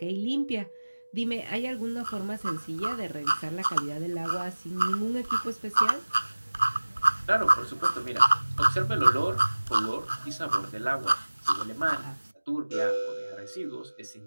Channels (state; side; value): inverted; both; correlation -1.00